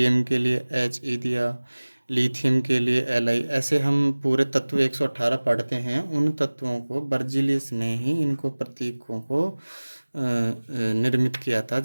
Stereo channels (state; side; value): inverted; both; correlation -1.00